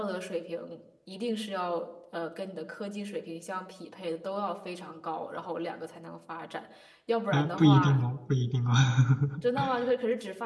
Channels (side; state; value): both; identical; correlation 1.00